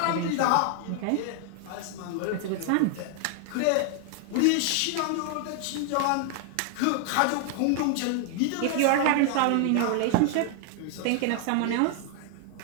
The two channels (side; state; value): both; different; correlation 0.00